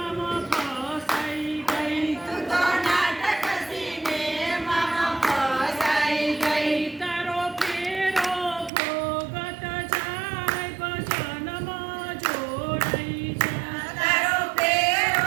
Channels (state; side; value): drops out; left; at 8.7 s